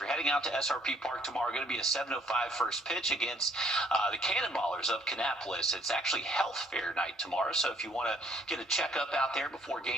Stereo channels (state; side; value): normal; both; correlation 0.63